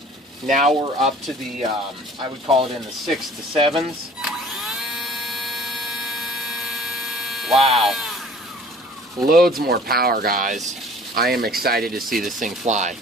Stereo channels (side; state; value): both; normal; correlation 0.49